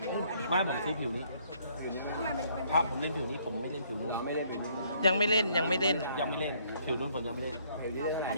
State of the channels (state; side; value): inverted; both; correlation -0.66